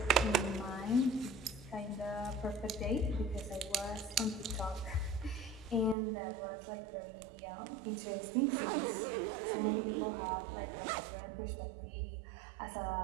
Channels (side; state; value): left; drops out; at 6.0 s